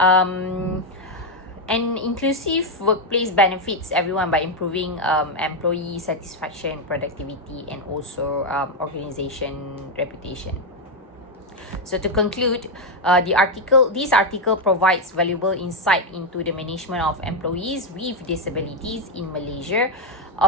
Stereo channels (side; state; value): both; normal; correlation 0.04